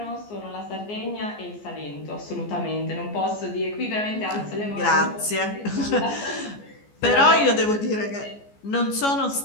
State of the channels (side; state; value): right; late; 14 ms